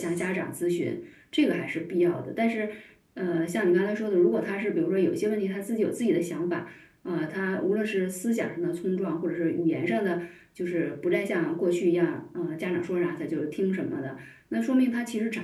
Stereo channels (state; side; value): identical; both; correlation 1.00